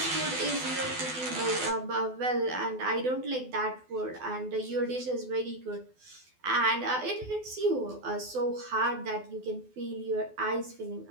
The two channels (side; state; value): left; late; 12 ms